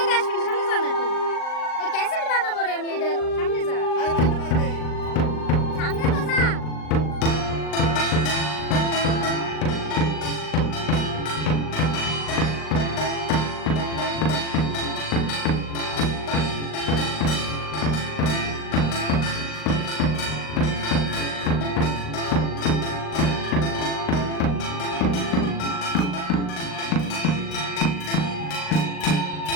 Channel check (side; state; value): right; late; 39 ms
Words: আসবি না, সামনে যা না একটু এই ক্যাসেট বানাবো রে আমি এটা সামনে যা আরে বাড়িতে বাড়িতে সামনে তো যা